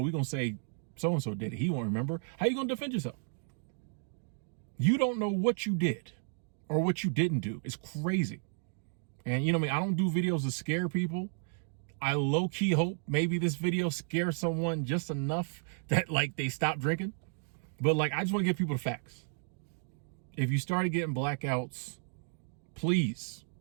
we're going to say so-and-so did it. He won't remember. How you going to defend yourself? You don't know what you did or what you didn't do. It's crazy. And you know me, I don't do videos to scare people. I low-key hope maybe this video scares someone just enough that like they stop drinking. But like, I just want to give people the facts. If you started getting blackouts, please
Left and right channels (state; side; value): silent; left; 56 dB below the other